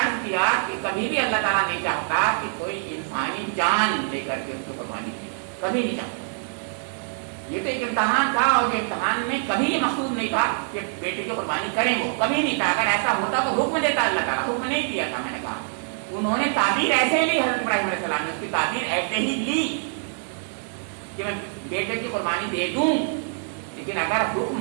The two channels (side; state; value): left; silent; digital silence